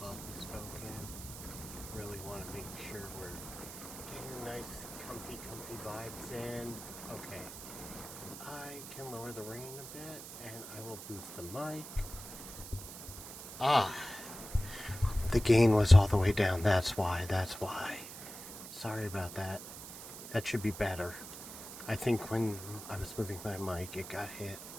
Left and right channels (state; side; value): noise; right; hiss, 11 dB below the sound